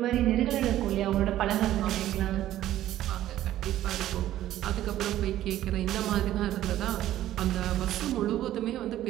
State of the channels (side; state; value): left; quieter; 13.3 dB